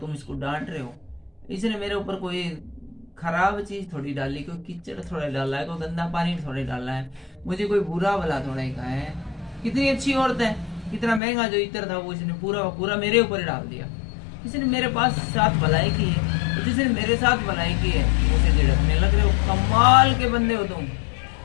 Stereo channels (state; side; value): drops out; right; at 11.2 s